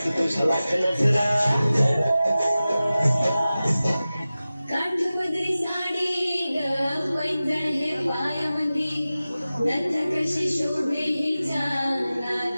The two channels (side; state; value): both; inverted; correlation -0.96